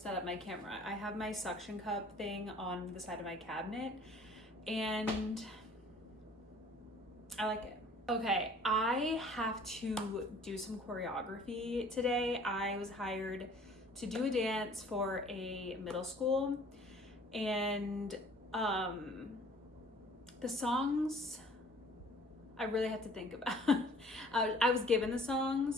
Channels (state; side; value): normal; both; correlation 0.52